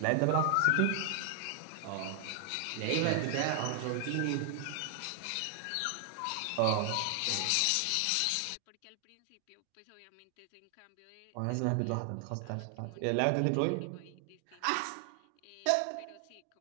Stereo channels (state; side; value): different; both; correlation 0.00